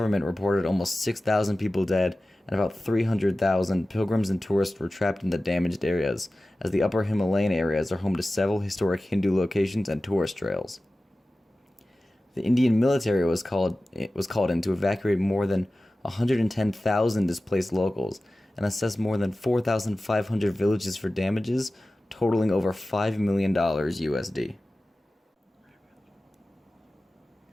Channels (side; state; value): both; normal; correlation 0.96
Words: reported almost 6,000 people dead and about 300,000 pilgrims and tourists were trapped in the damaged areas, as the upper Himalayan areas are home to several historic Hindu locations and tourist trails. The Indian military was called in to evacuate more than 110,000 displaced locals and assess more than 4,500 villages for damages, totaling over $5 million USD.